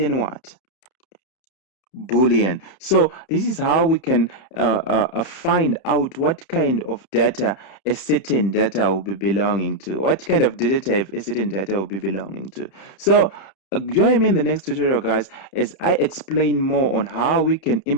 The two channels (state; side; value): late; right; 31 ms